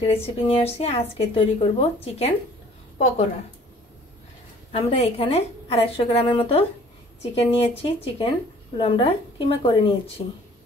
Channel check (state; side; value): normal; both; correlation 0.53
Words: रेसिपि निये आसछि। आजके तैरि करब चिकेन पकोड़ा। आमरा एखाने 250 ग्रामेर मतो चिकेन नियेछि। चिकेनगुलो आमरा किमा करे नियेछि।